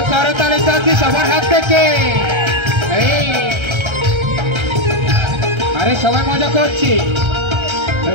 করতালি চাচ্ছি সবার হাত থেকে। এই আরে সবাই মজা করছি।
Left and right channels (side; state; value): left; late; 1.3 ms